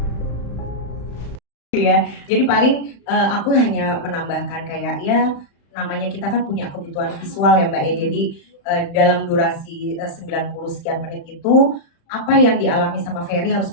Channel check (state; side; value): late; right; 35 ms